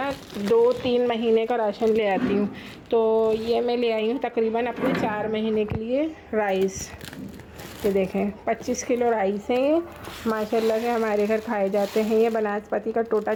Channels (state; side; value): identical; both; correlation 1.00